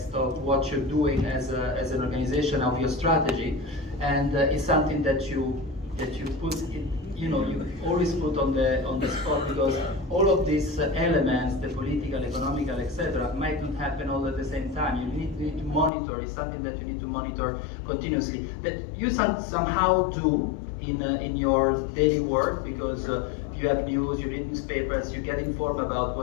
of what you're doing as an organization, of your strategy, and it's something that you put in, you always put on the spot, because all of these elements, the political, economical, etc., might not happen all at the same time. You need to monitor. It's something that you need to monitor continuously. That you somehow do in your daily work, because you have news, you read newspapers, you get informed about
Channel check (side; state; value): right; drops out; at 15.9 s